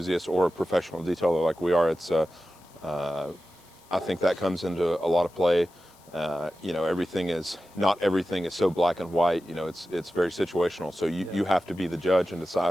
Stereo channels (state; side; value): noise; left; hiss, 28 dB below the sound